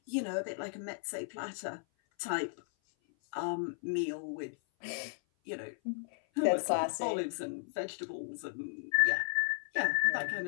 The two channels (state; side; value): silent; right; 54 dB below the other